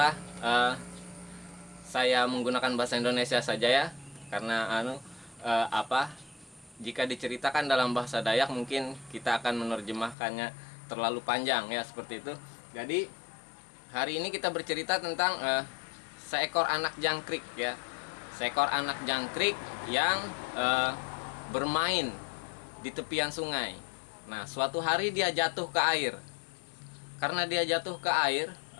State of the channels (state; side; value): drops out; right; at 10.2 s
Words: saya menggunakan bahasa Indonesia saja ya, karena jika diceritakan dalam bahasa Dayak mungkin kita akan menerjemahkannya terlalu panjang ya, seperti itu. Jadi hari ini kita bercerita tentang seekor anak jangkrik ya. Seekor anak jangkrik yang bermain di tepian sungai. Nah, suatu hari dia jatuh ke air. Karena dia jatuh ke air,